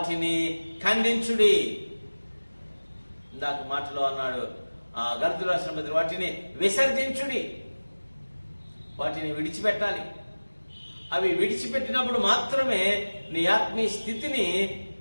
ఖండించుడి. ఇందాక మాటలో అన్నాడు గళతీయులకు రాసిన పత్రిక, వాటిని విసర్జించుడి, వాటిని విడిచిపెట్టాలి. అవి విడిచిపెట్టినప్పుడు మాత్రమే నీ ఆత్మీయ స్థితిని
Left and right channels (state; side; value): inverted; both; correlation -1.00